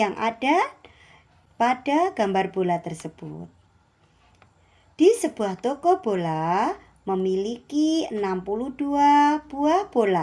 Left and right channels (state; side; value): identical; both; correlation 1.00